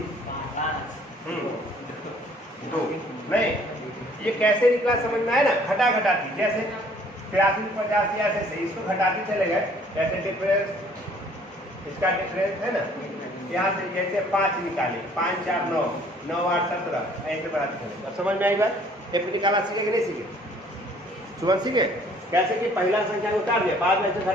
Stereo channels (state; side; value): normal; both; correlation 0.57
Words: 2 नहीं। ये कैसे निकला समझ में आया ना, घटा घटाती, जैसे 83 85 ऐसे से इसको घटाते चले गए, जैसे डिफरेंस इसका डिफरेंस है ना, यहाँ से जैसे 5 निकाले 5 4 9 9 8 17 ऐसे बढ़ाते चले। अब समझ में आई बात, एक निकाला सीखे कि नहीं सीखे, सुबह सीखे कैसे कि पहला संख्या को उतार दिया, बाद में ऐसे